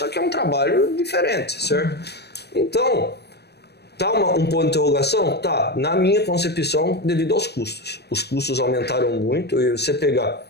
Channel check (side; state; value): right; late; 0.48 ms